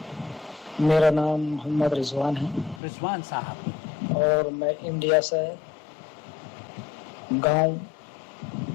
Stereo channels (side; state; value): right; drops out; at 2.8 s